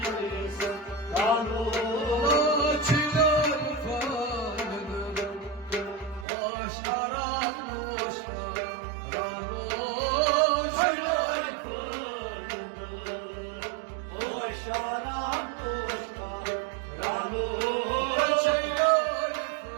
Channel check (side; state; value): left; drops out; at 6.2 s